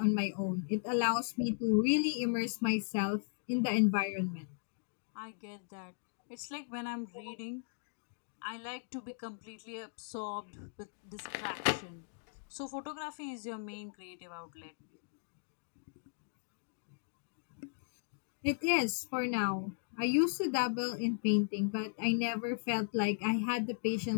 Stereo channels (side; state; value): right; silent; digital silence